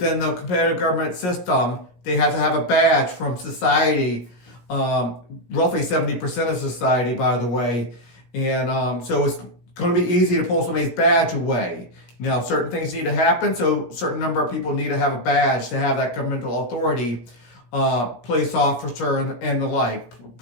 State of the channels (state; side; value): late; right; 17 ms